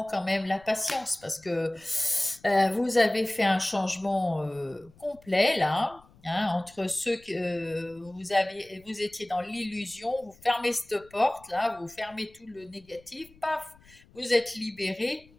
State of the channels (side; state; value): left; noise; rumble, 27 dB below the sound